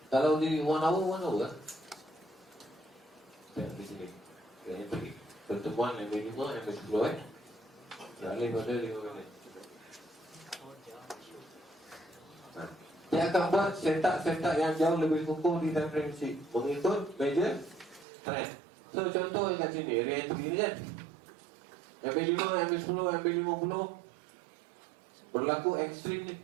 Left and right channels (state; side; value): drops out; left; at 18.1 s